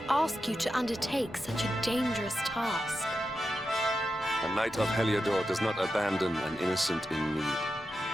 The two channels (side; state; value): both; normal; correlation 0.89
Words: ask you to undertake such a dangerous task. A knight of Heliodor does not abandon an innocent in need.